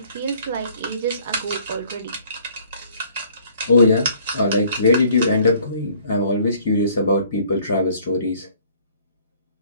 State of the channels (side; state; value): both; inverted; correlation -0.58